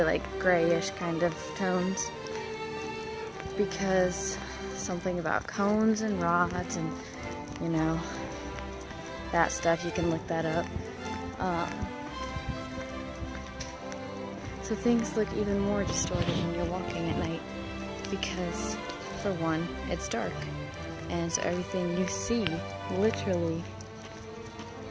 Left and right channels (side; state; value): both; identical; correlation 1.00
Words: like grayish kind of tones, because something about cones and rods and that stuff, you can look that up. So things look even more distorted when you're walking at night because, for one, it's dark, and so everything you see literally